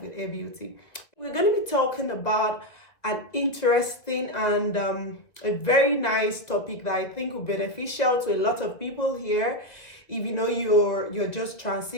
with A Beauty. We're going to be talking about an interesting and a very nice topic that I think will be beneficial to a lot of people here. If you know you're just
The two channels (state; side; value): late; right; 1.9 ms